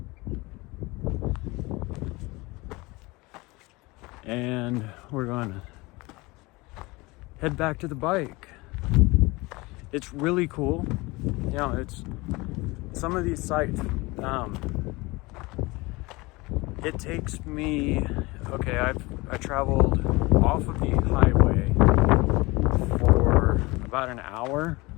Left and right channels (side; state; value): right; quieter; 23.2 dB